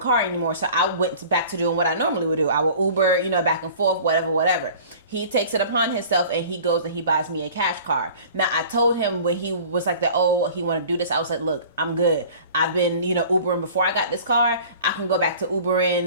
anymore. So I went back to doing what I normally would do. I would Uber, back and forth, whatever. He takes it upon himself and he goes and he buys me a cash car. Now I told him when he was like he want to do this, I was like, look, I'm good. I've been, Ubering before I got this car. I can go back to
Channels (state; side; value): inverted; both; correlation -0.44